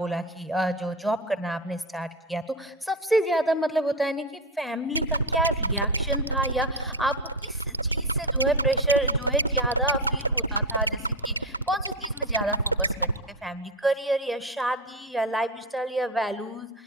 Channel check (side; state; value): both; normal; correlation 0.16